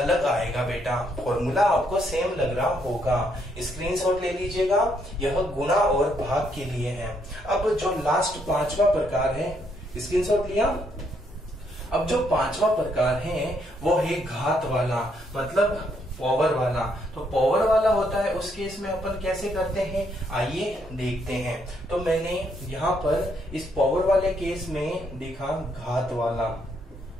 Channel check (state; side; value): normal; both; correlation 0.73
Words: आएगा बेटा। फॉर्मूला आपको सेम लग रहा होगा, स्क्रीनशॉट ले लीजिएगा। यह गुणा और भाग के लिए है। अब जो लास्ट पांचवा प्रकार है, स्क्रीनशॉट लिया। अब जो पांचवा प्रकार है वो है घात वाला, मतलब पावर वाला। तो पावर वाला होता है उस केस में अपन कैसे करते हैं, आइए देखते हैं। तो मैंने यहाँ पर इस पावर वाले केस में देखा घात वाला